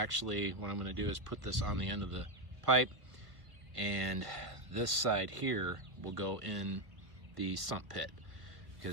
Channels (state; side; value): late; left; 1.5 ms